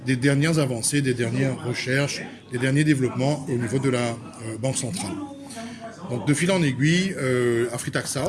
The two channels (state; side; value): identical; both; correlation 1.00